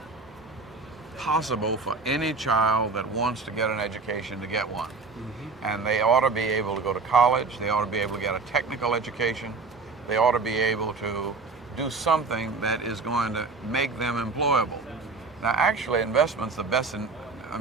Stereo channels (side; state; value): left; quieter; 4.2 dB